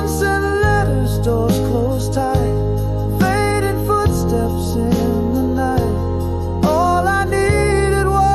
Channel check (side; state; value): both; identical; correlation 1.00